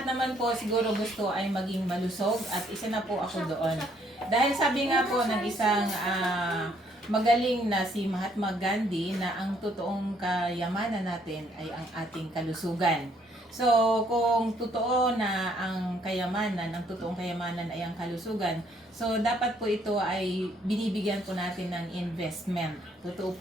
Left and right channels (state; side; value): normal; both; correlation 0.67